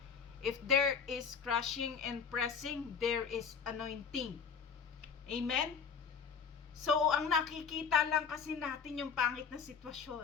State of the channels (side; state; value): right; quieter; 6.3 dB